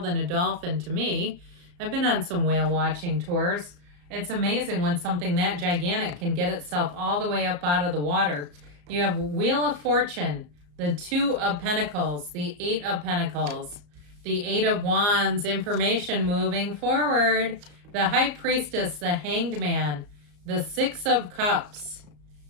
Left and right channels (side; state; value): left; late; 34 ms